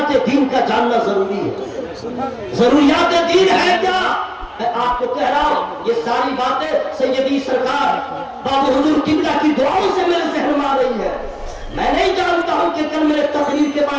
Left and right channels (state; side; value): identical; both; correlation 1.00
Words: دین کا جاننا ضروری ہے. ضروریات دین ہے کیا؟ میں آپ کو کہہ رہا ہوں، یہ ساری باتیں سیدی سرکار بابا حضور قبلہ کی دعاؤں سے میرے ذہن میں آ رہی ہے. میں نہیں جانتا ہوں کہ کل میرے تقریر کے